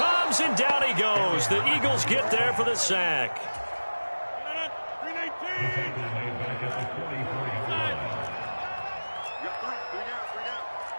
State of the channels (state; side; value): inverted; both; correlation -1.00